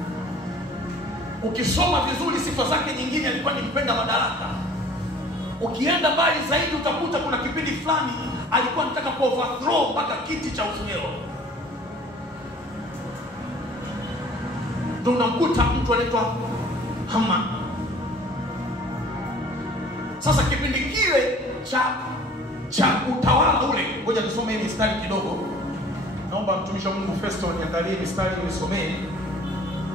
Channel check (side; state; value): both; normal; correlation 0.50